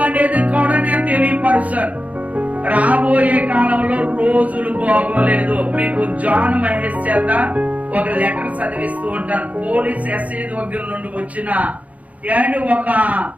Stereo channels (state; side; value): late; left; 0.069 ms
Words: అనేది కూడా నేను తెలియపరుస్తాను. రాబోయే కాలంలో రోజులు బాగోలేదు. మీకు జాన్ మహేష్ చేత ఒక లెటర్ చదివిస్తూ ఉంటాను. పోలీస్ ఎస్ఐ దగ్గర నుండి వచ్చిన ఒక